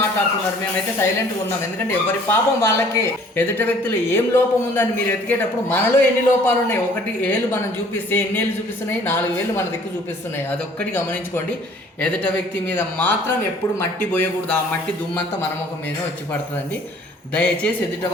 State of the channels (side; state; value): both; normal; correlation 0.55